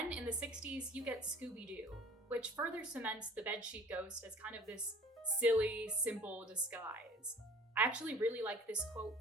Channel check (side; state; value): both; normal; correlation 0.48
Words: in the 60s, you get Scooby-Doo, which further cements the bedsheet ghost as kind of this silly, simple disguise. I actually really like this quote